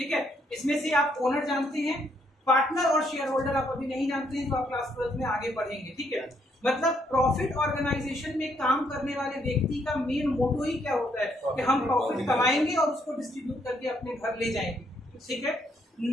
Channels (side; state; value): both; normal; correlation 0.72